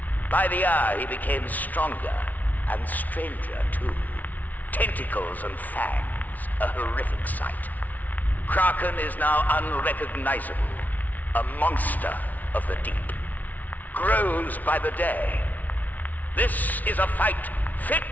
By the hour, he became stronger and stranger, too. Tentacles and fangs, a horrific sight. Kraken is now unrecognizable, a monster of the deep. Grows by the day. This is a fight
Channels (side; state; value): right; late; 0.076 ms